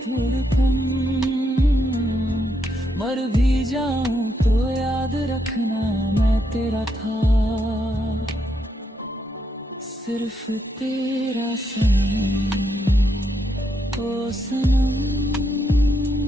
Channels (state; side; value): normal; both; correlation 0.78